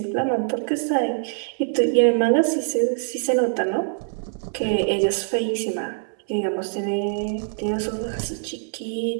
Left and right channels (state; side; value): silent; left; 63 dB below the other